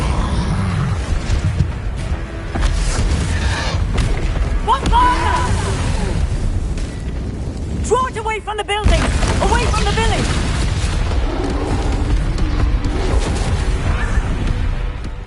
Draw it away from the building! Away from the village!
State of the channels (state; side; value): identical; both; correlation 1.00